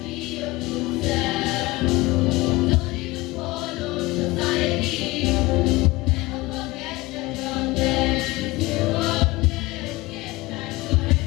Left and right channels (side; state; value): right; quieter; 21.2 dB